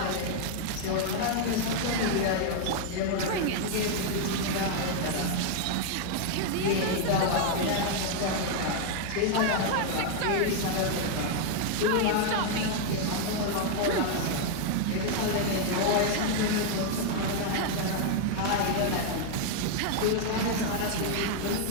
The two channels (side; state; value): both; different; correlation 0.00